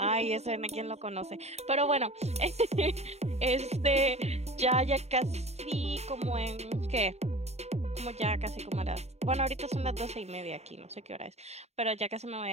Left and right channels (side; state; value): left; late; 0.31 ms